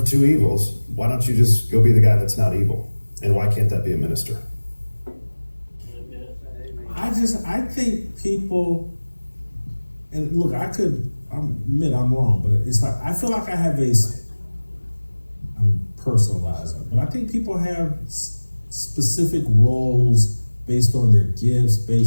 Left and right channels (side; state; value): both; inverted; correlation -1.00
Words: two evils. Why don't you just go be the guy that's not evil? And why can't that be a minister? I think people, and look, I admit I'm wrong, but it's like, I feel like I have I'm personalizing, but I think people have specific roles based on their gifts,